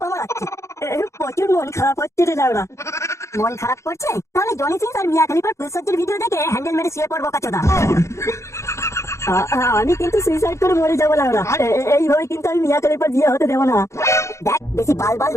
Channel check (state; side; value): late; right; 0.14 ms